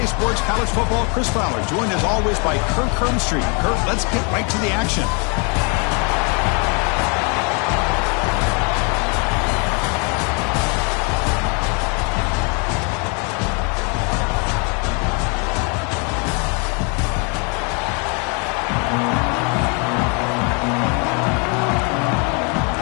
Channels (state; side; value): quieter; right; 35.2 dB